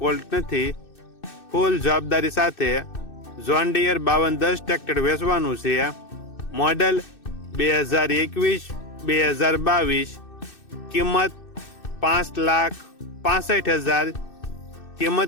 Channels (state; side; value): late; right; 2.6 ms